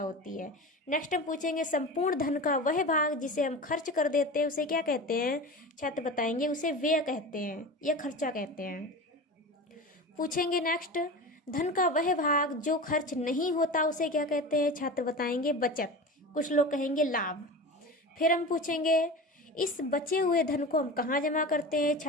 है। नेक्स्ट हम पूछेंगे संपूर्ण धन का वह भाग जिसे हम खर्च कर देते हैं उसे क्या कहते हैं। छात्र बताएंगे उसे व्यय कहते हैं या खर्चा कहते हैं। पूछेंगे नेक्स्ट धन का वह भाग जो खर्च नहीं होता उसे क्या कहते हैं। छात्र बताएंगे बचत, कुछ लोग कहेंगे लाभ। फिर हम पूछेंगे इस बचे हुए धन को हम कहाँ जमा करते हैं।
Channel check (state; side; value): normal; both; correlation 0.30